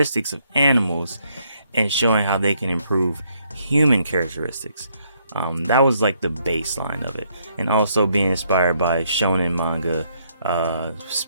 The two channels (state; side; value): inverted; both; correlation -0.72